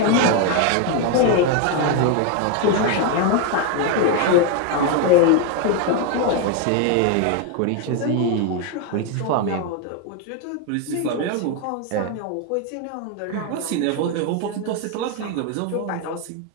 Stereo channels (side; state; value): both; different; correlation 0.01